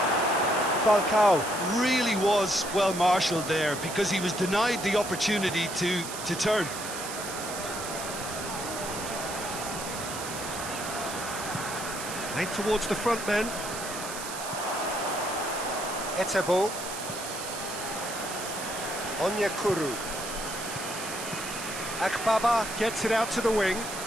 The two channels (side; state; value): right; noise; hiss, 8 dB below the sound